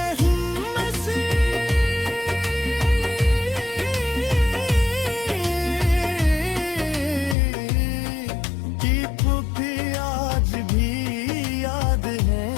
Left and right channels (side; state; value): right; drops out; at 7.4 s